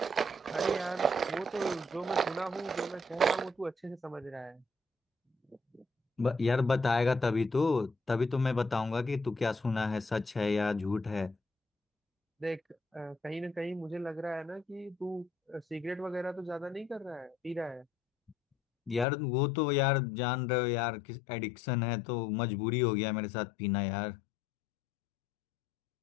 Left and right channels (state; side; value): drops out; right; at 19.1 s